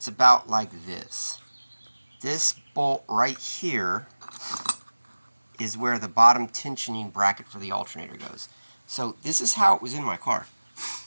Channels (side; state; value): both; inverted; correlation -1.00